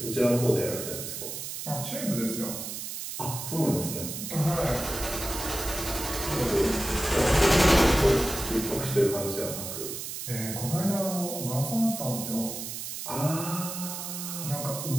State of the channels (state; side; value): noise; right; hiss, 7 dB below the sound